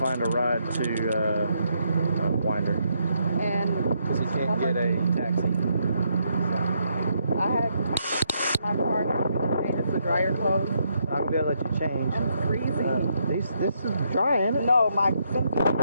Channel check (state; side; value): inverted; both; correlation -0.75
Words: find a ride to Winder and because he can't get a taxi. I had my car changes to dryer clothes. I'm gonna be able to let you change. I'm freezing. This is dry, ain't it? No, my sink is